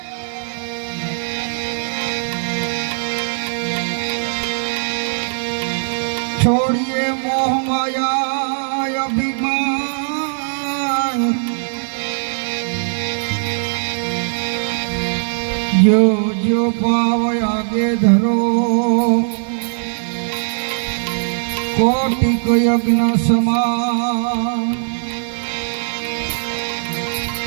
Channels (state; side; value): silent; left; digital silence